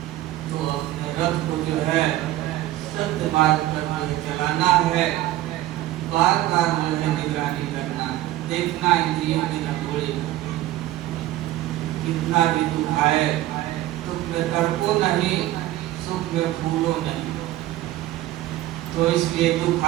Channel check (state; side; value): quieter; left; 15.1 dB